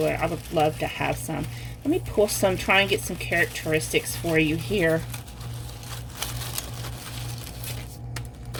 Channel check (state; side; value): identical; both; correlation 1.00